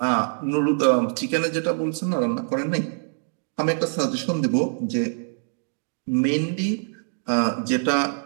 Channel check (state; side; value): silent; left; digital silence